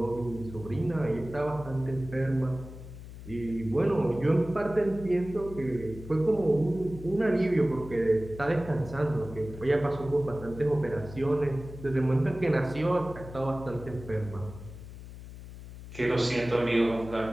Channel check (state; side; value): noise; left; hum, 14 dB below the sound